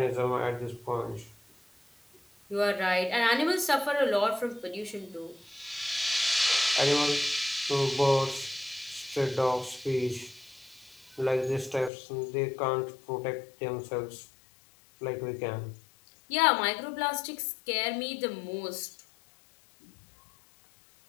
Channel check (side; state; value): right; drops out; at 11.9 s